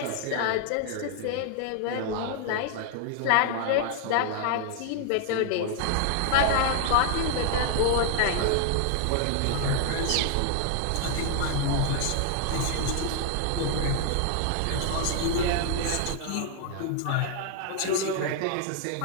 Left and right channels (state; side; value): different; both; correlation 0.00